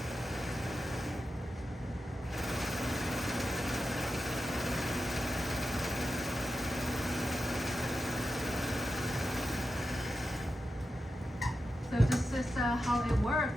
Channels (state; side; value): normal; both; correlation 0.89